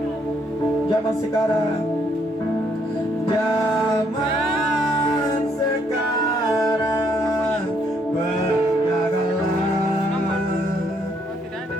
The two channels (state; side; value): normal; both; correlation 0.71